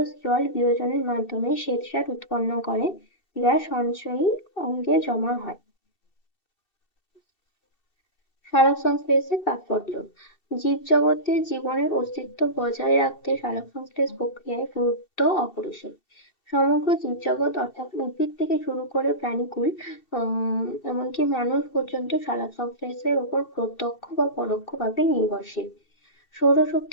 জল বিয়োজনের মাধ্যমে শ্বেতসার উৎপন্ন করে, যা সঞ্চয়ী অঙ্গে জমা হয়। সালোকসংশ্লেষের তাৎপর্য, জীবজগতে জীবনের অস্তিত্ব বজায় রাখতে সালোকসংশ্লেষ প্রক্রিয়ায় গুরুত্ব অপরিসীম। সমগ্র জীবজগৎ অর্থাৎ উদ্ভিদ থেকে শুরু করে প্রাণীকুল এমনকি মানুষ পর্যন্ত সালোকসংশ্লেষের উপর প্রত্যক্ষ বা পরোক্ষভাবে নির্ভরশীল।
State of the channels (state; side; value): late; right; 2.7 ms